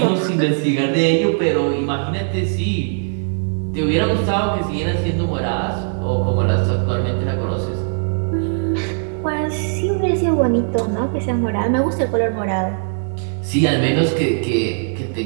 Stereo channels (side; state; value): left; silent; digital silence